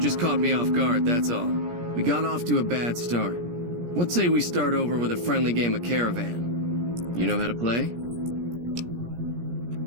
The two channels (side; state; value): left; late; 17 ms